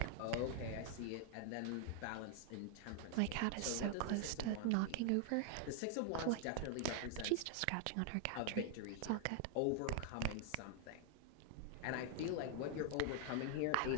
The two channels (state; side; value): different; both; correlation 0.00